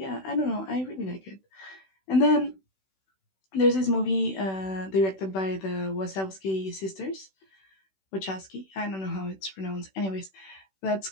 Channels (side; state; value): right; late; 16 ms